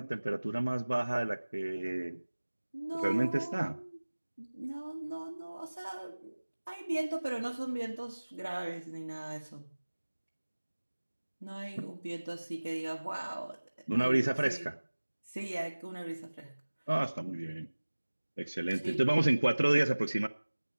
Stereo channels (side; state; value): both; inverted; correlation -1.00